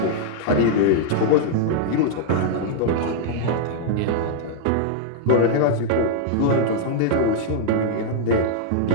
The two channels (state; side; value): different; both; correlation -0.01